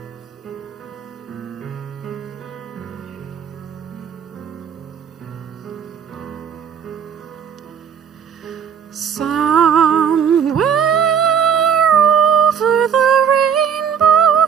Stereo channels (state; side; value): quieter; left; 7.6 dB